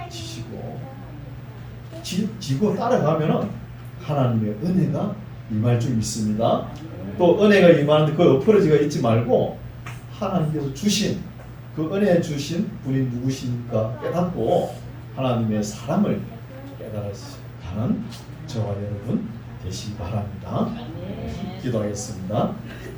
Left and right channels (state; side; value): identical; both; correlation 1.00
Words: 지시고 지고 따라가면은 하나님의 은혜가 임할 줄 믿습니다. 또 은혜가 임하는데 그 엎어지가 있지 말고 하나님께서 주신 그 은혜 주신 분이 누구십니까 깨닫고 하나님의 사랑을 깨달아가는 저와 여러분 되시기 바랍니다. 기도하겠습니다.